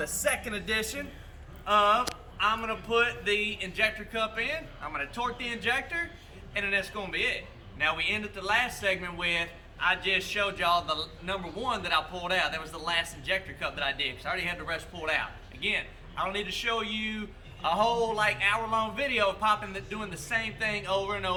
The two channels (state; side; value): identical; both; correlation 1.00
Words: second edition of I'm going to put the injector cup in, I'm going to torque the injector, and then that's going to be it. Now, we ended the last segment with, I just showed y'all the number 1 that I pulled out. That was the last injector cup that I did, because I already had the rest pulled out. Again, I don't need to show you a whole like hour-long video of doing the same thing over and